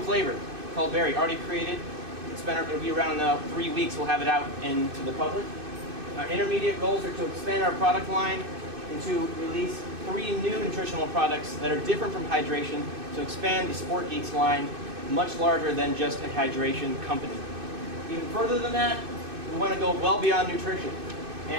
flavor called Berry, already created. It'll be around 3 weeks, we'll have it out into the public. Our intermediate goals are to expand our product line and to release 3 new nutritional products that are different from hydration to expand the Sport Geeks line much larger than just a hydration company. Even further than that, we want to go well beyond nutrition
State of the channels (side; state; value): left; late; 2.6 ms